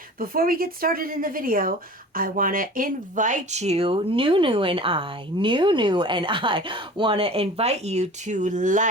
Before we get started in the video, I want to invite you, Nunu and I want to invite you to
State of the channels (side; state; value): both; normal; correlation 0.40